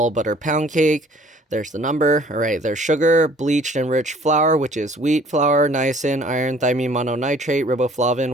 butter pound cake. There's the number. All right, there's sugar, bleached enriched flour, which is wheat flour, niacin, iron, thiamine mononitrate,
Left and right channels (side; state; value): both; normal; correlation 0.55